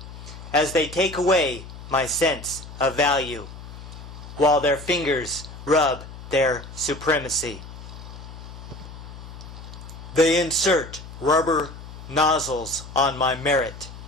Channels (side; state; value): left; noise; hum, 14 dB below the sound